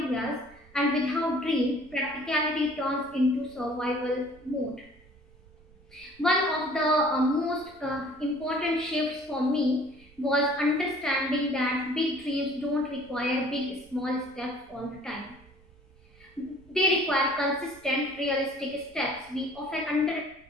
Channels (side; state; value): right; noise; rumble, 26 dB below the sound